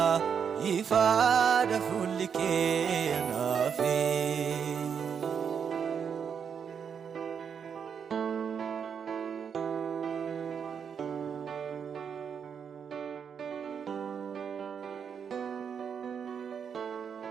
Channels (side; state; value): left; quieter; 7.1 dB